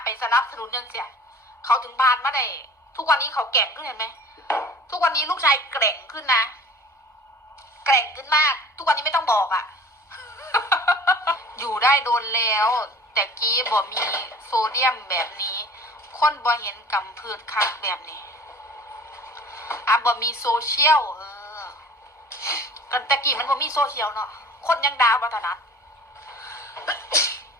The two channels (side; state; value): both; normal; correlation 0.45